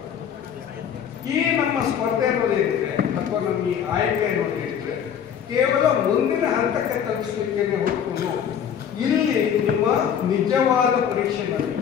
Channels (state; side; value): quieter; right; 8.4 dB